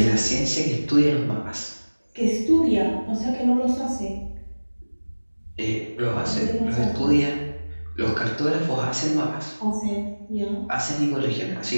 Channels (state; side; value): inverted; both; correlation -1.00